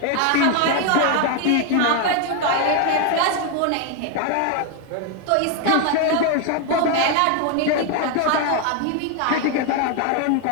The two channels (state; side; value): different; both; correlation 0.01